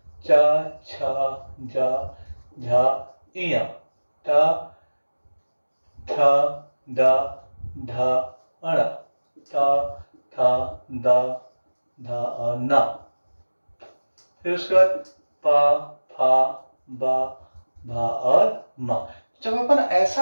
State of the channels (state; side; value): inverted; both; correlation -1.00